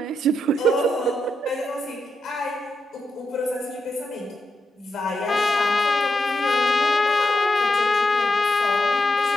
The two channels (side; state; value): both; normal; correlation 0.85